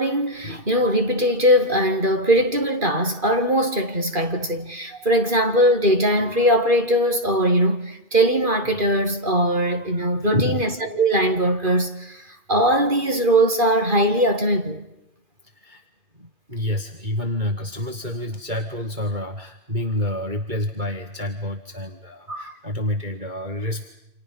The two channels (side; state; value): left; late; 2.4 ms